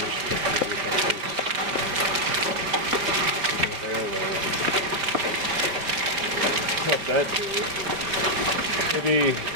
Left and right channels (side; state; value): left; late; 4.7 ms